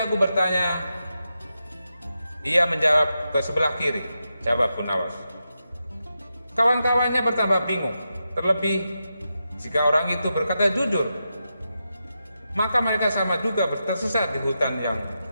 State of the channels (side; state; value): both; inverted; correlation -0.88